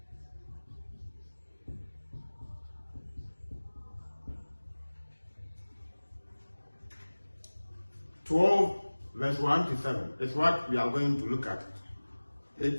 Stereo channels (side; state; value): both; inverted; correlation -1.00